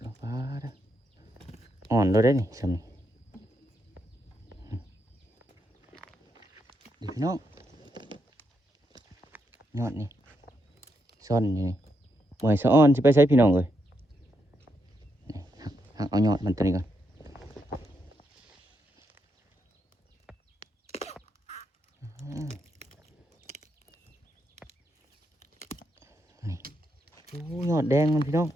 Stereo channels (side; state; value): both; normal; correlation 0.81